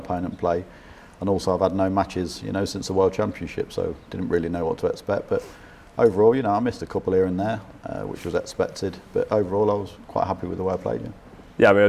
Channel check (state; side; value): identical; both; correlation 1.00